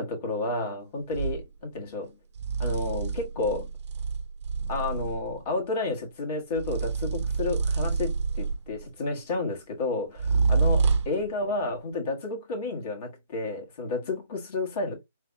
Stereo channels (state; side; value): inverted; both; correlation -0.54